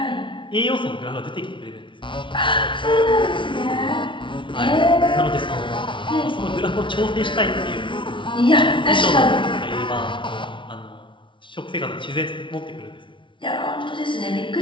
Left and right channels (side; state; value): right; late; 0.24 ms